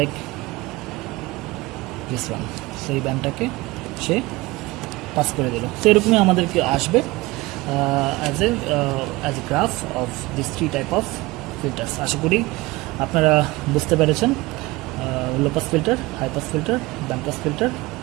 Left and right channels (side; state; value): left; quieter; 21.3 dB